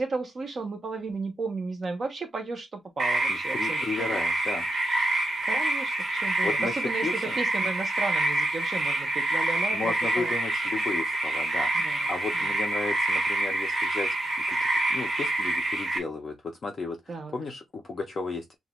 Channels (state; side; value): normal; both; correlation 0.84